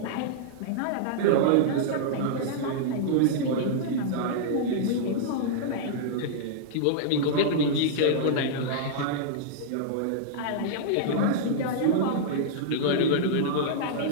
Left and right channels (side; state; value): both; different; correlation -0.02